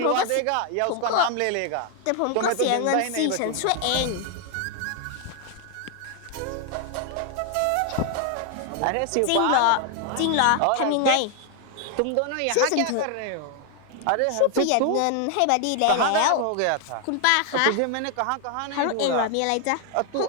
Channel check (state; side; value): different; both; correlation 0.00